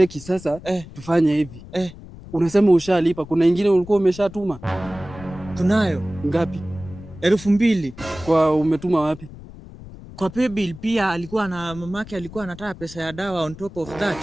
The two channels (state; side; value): noise; left; rumble, 16 dB below the sound